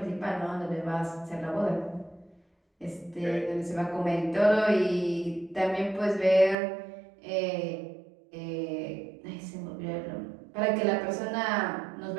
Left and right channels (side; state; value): left; drops out; at 6.6 s